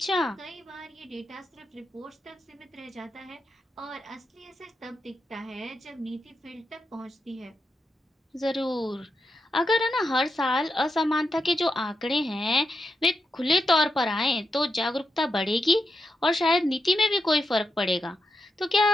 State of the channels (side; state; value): both; normal; correlation 0.86